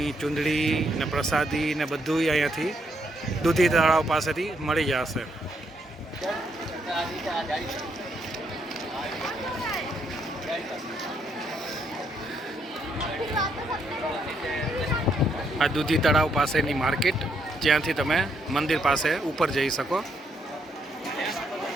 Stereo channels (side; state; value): both; normal; correlation 0.75